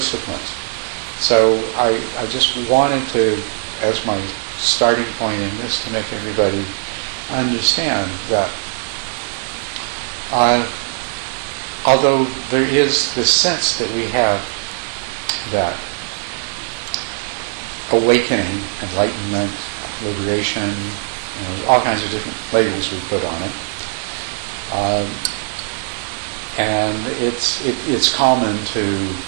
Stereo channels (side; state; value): left; silent; digital silence